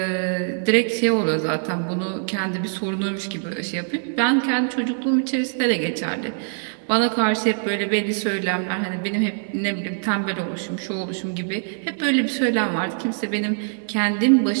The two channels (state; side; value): silent; left; 63 dB below the other